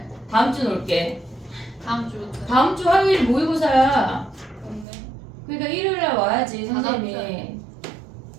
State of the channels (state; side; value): drops out; left; at 4.9 s